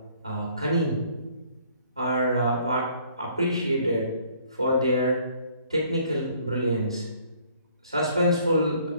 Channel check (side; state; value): both; inverted; correlation -0.60